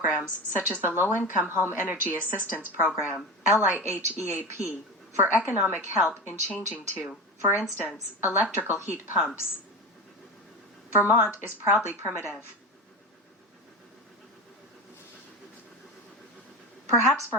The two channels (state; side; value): normal; both; correlation 0.25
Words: such as the Low-Income Home Energy Assistance Program, LIHEAP, for economic help in changing to, for instance, electrical heat pumps. Vermont is proudly primitive. Perhaps